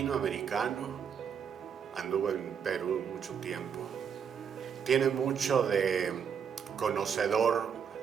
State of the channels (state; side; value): quieter; left; 7.3 dB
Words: anduvo en Perú mucho tiempo, tiene mucho de conocedor